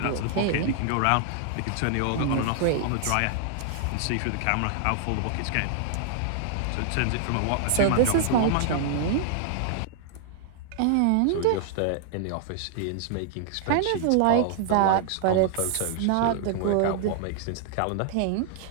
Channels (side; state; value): both; different; correlation -0.01